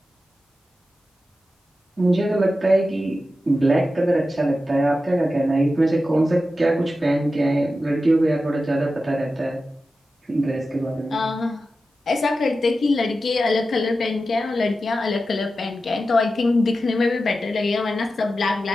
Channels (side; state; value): both; normal; correlation 0.92